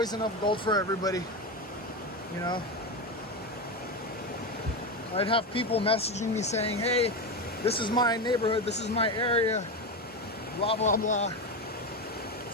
enough gold for everybody, you know. I'd have people messaging me saying, hey, this is my neighborhood, this is my area, blah, blah, blah.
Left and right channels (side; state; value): both; normal; correlation 0.16